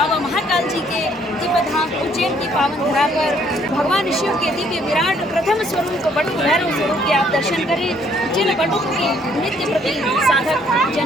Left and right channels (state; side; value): normal; both; correlation 0.65